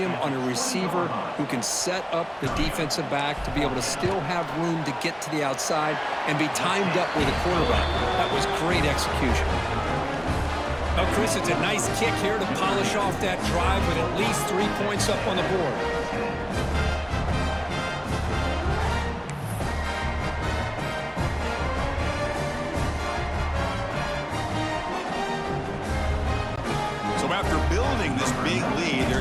on a receiver who can set up the defensive back to be able to still have room to get to the outside and be timed up with a quarterback. That was great execution. Well, Chris, it's a nice kick here to polish off that drive with at least 3 points up on the board. After building this big lead, they're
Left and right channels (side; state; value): both; identical; correlation 1.00